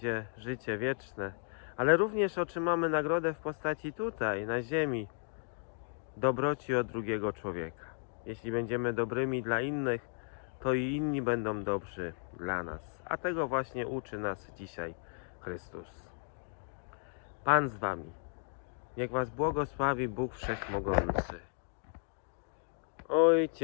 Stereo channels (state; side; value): silent; right; 55 dB below the other